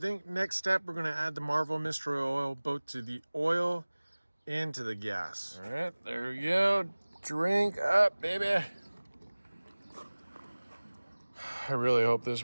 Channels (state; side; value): inverted; both; correlation -1.00